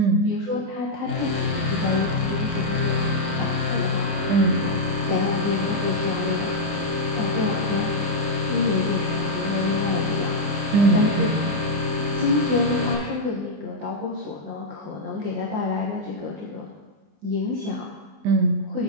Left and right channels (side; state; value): left; late; 20 ms